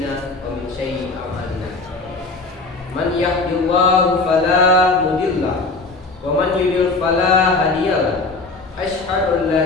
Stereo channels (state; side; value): quieter; right; 3.6 dB